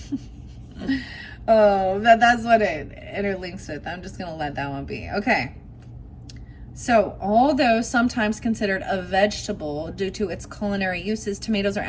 Oh, that's what it interlinks with. I'm just going to let that one be. Okay. So, although sometimes considered a vegetable due to its culinary uses, tomatoes are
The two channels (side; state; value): both; identical; correlation 1.00